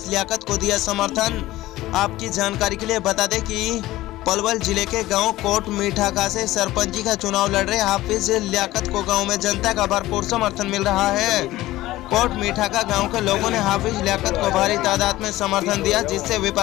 लियाकत को दिया समर्थन। आपकी जानकारी के लिए बता दें कि पलवल जिले के गांव कोट मीठाका से सरपंची का चुनाव लड़ रहे हाफिज लियाकत को गांव में जनता का भरपूर समर्थन मिल रहा है। कोट मीठाका गांव के लोगों ने हाफिज लियाकत को भारी तादाद में समर्थन दिया, जिससे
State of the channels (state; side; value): quieter; right; 16.7 dB